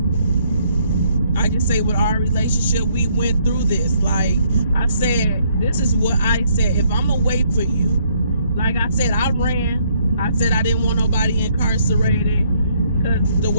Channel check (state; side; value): inverted; both; correlation -0.68